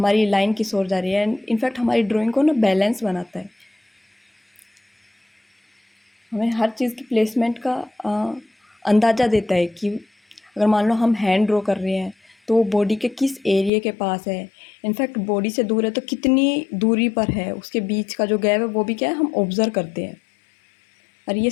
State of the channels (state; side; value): drops out; right; at 13.7 s